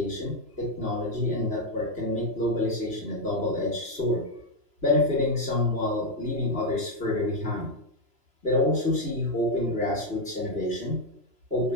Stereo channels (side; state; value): left; late; 3.0 ms